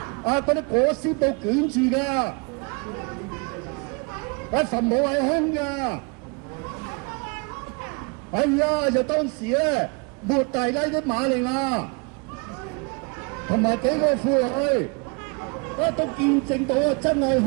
嗰啲裹屍布捲住㗎。墳墓係空㗎，就當時咧，抹大拉的瑪利亞同埋幾個婦女，都見證到真係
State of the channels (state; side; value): quieter; left; 32.3 dB